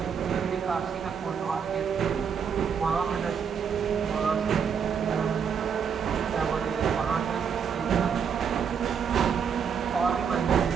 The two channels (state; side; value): quieter; left; 7.0 dB